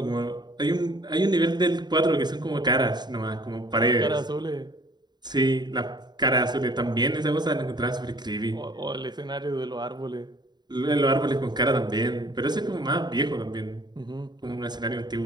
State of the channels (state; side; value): late; left; 0.21 ms